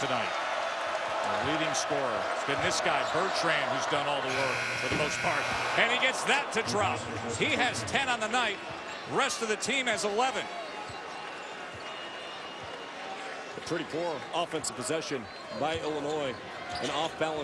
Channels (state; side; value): identical; both; correlation 1.00